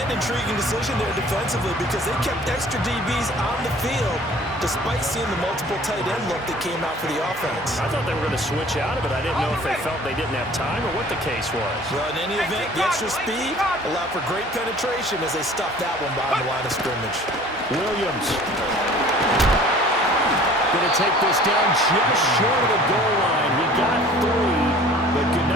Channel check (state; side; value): normal; both; correlation 0.49